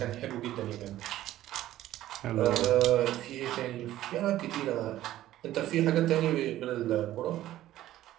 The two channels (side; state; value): left; quieter; 14.0 dB